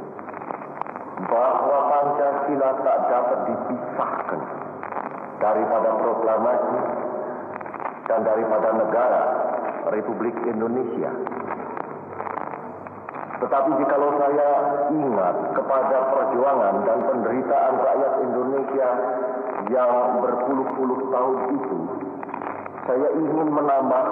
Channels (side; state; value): both; identical; correlation 1.00